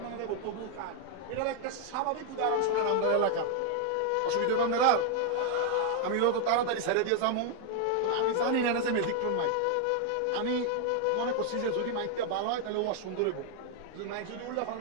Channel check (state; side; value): different; both; correlation 0.00